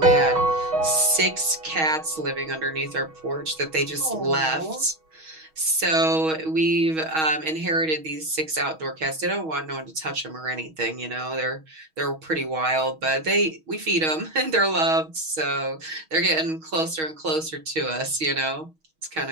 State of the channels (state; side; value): late; left; 6.3 ms